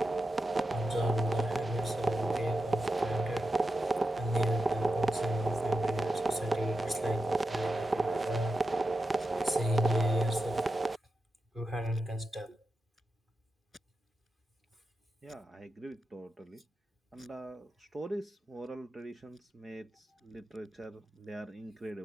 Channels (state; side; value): normal; both; correlation 0.89